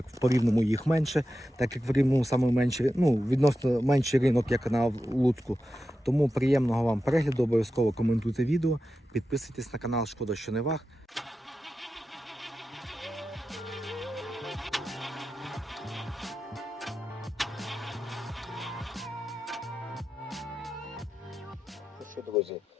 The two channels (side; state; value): both; normal; correlation 0.91